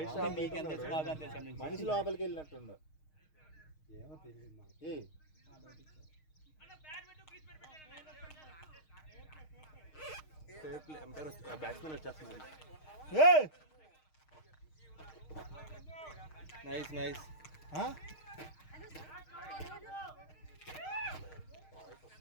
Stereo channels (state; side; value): late; right; 6.5 ms